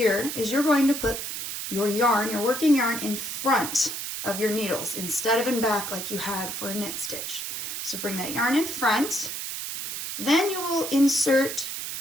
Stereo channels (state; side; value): noise; right; hiss, 5 dB below the sound